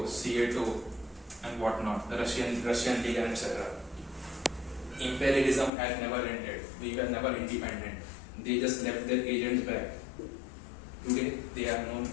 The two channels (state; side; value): drops out; right; at 5.7 s